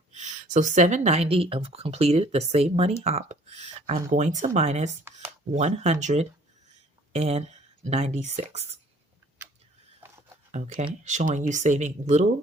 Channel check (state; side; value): normal; both; correlation 0.56